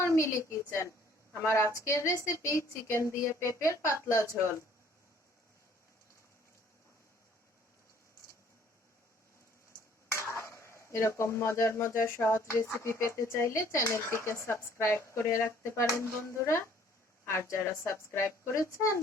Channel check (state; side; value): normal; both; correlation 0.58